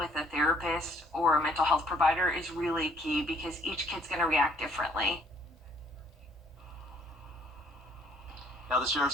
a therapist or a mental health provider is really key, because each kid's going to react differently. Now, the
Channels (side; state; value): both; normal; correlation 0.63